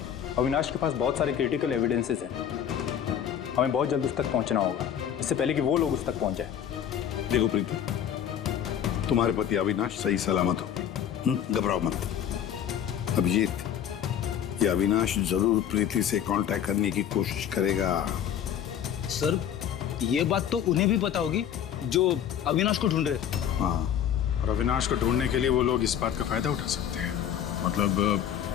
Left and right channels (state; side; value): quieter; right; 9.5 dB